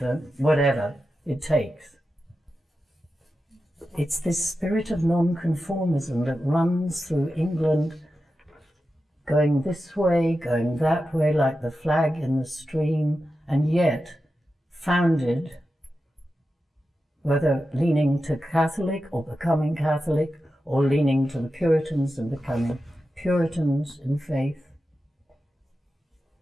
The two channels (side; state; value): both; normal; correlation 0.91